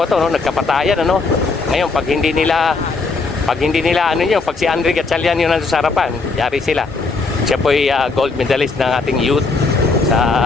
to, no? Nagkapatayan, ano? Ngayon, pag hindi nila, pag si Andre Gatchalian yun nandun sa harapan, yari sila. Siya po ay gold medalist ng ating youth sa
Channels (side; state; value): right; quieter; 4.0 dB